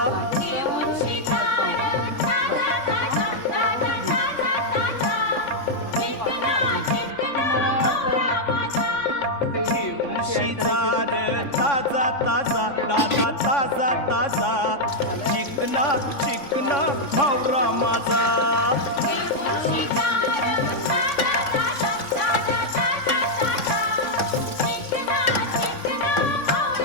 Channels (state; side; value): late; right; 3.3 ms